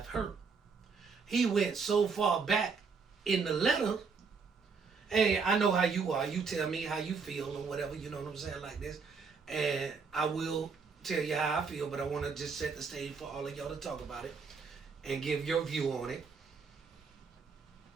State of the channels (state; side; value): quieter; left; 5.1 dB